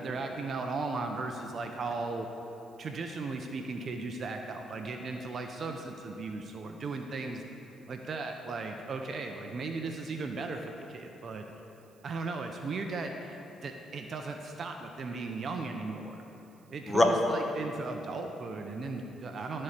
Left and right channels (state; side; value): noise; right; hiss, 30 dB below the sound